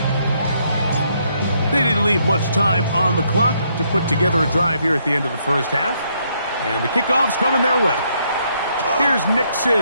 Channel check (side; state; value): both; inverted; correlation -0.72